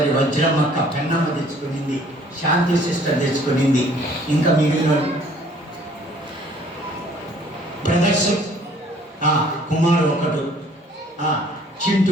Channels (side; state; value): both; normal; correlation 0.57